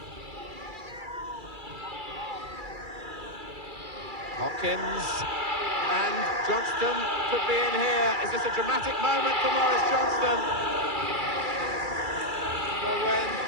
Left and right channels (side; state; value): left; late; 2.3 ms